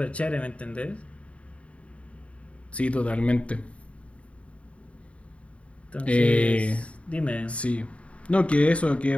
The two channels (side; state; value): right; late; 0.063 ms